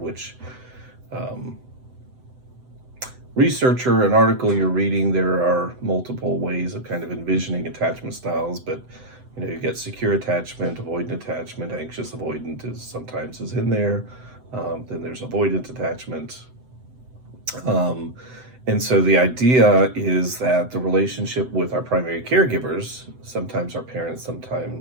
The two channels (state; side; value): late; left; 7.9 ms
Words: which researcher and article you're reading, there are multiple ways of kind of envisioning attachment styles, but you get secure attachment, avoidant attachment, anxious avoidant sometimes is in there. Then there's avoidant attachment. And so the idea is that the relationship with our primary caregivers, sometimes our parents,